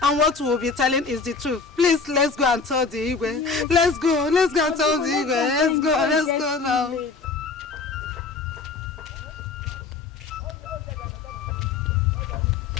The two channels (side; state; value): right; quieter; 4.6 dB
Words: And what we'll be telling is the truth. Please, let's go and tell the Igwe. Let's go and tell the Igwe. Let's go now.